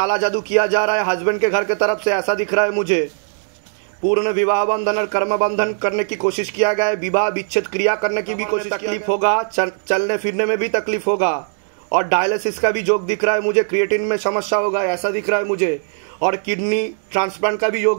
जादू किया जा रहा है हस्बैंड के घर के तरफ से, ऐसा दिख रहा है मुझे। पूर्ण विवाह बंधन और कर्म बंधन करने की कोशिश किया गया है, विवाह विच्छेद क्रिया करने की भी कोशिश, तकलीफ होगा, चलने फिरने में भी तकलीफ होगा, और डायलिसिस का भी योग दिख रहा है मुझे, क्रिएटिन में समस्या होगा ऐसा दिख रहा है मुझे, और किडनी ट्रांसप्लांट का भी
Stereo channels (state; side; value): silent; left; digital silence